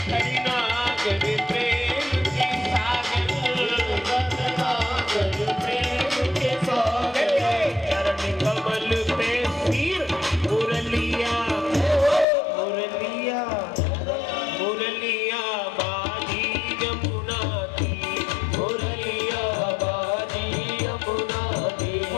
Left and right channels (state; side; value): drops out; right; at 12.2 s